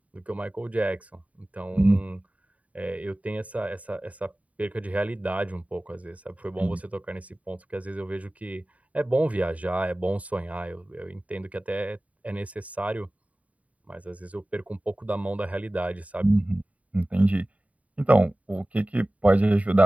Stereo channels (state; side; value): late; left; 0.068 ms